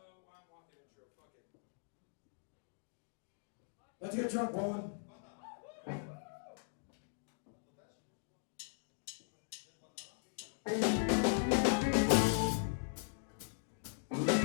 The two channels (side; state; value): right; silent; digital silence